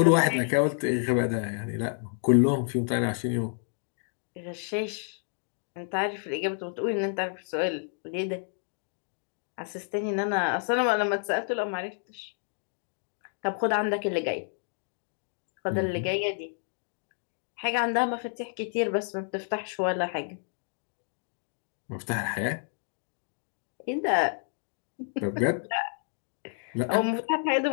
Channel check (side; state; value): right; silent; 58 dB below the other